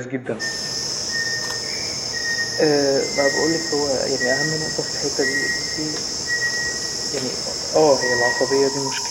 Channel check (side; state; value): both; identical; correlation 1.00